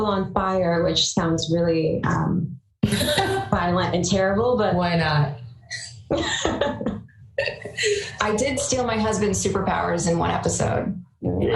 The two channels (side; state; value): both; identical; correlation 1.00